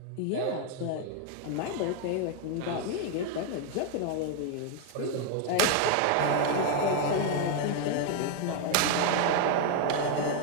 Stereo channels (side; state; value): both; different; correlation 0.01